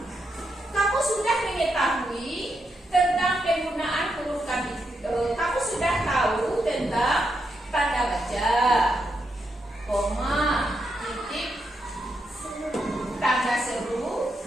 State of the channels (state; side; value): normal; both; correlation 0.82